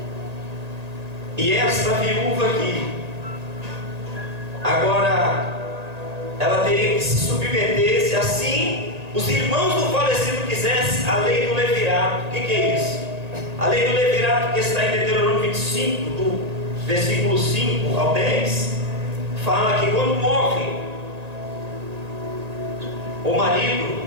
E essa viúva aqui, agora, ela teria que se submeter, se assim os irmãos do falecido quisessem, a lei do levirato. O que é isso? A lei do levirato, que está em Deuteronômio 25, do versículo 5 ao 10, fala que quando morre o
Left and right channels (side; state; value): left; late; 1.8 ms